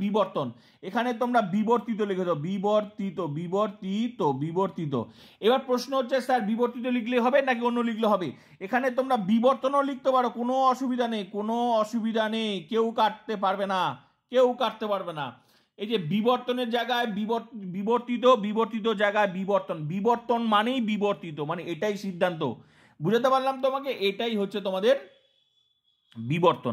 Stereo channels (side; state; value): both; identical; correlation 1.00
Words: বিবর্তন। এখানে তোমরা বিবর্তিত লিখে দাও, বিবর্তিত, বিবর্তিত, বিবর্তিত। এবার প্রশ্ন হচ্ছে স্যার বিবর্তিত লিখলে হবে নাকি অন্য লিখলে হবে। এখানে তোমরা বিবর্তনও লিখতে পারো, কোনো অসুবিধা নেই, কোনো অসুবিধা নেই, কেউ কাটতে পারবে না, কেউ কাটতে পারবে না। এই যে বিবর্তনের জায়গায় বিবর্তিত, বিবর্তিত জায়গায় বিবর্তন, বিবর্তন মানেই বিবর্তিত, মানে এটাই সিদ্ধান্ত। বুঝাতে পারলাম তোমাকে, এটাই হচ্ছে তোমাদের বিবর্তন,